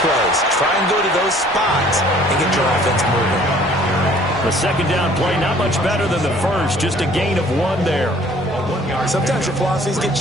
plays. Try and go to those spots and get your offense moving. The second down play, not much better than the first, just a gain of 1 there. Sometimes your philosophies get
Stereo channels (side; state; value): both; normal; correlation 0.55